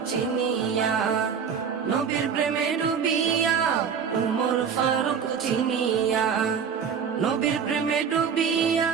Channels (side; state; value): left; quieter; 6.9 dB